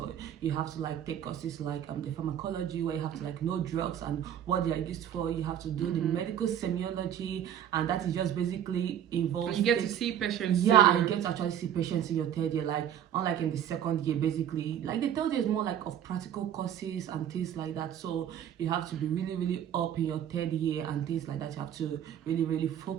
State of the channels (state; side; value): quieter; left; 10.0 dB